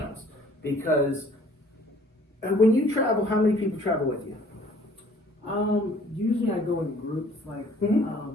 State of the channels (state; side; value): normal; both; correlation 0.56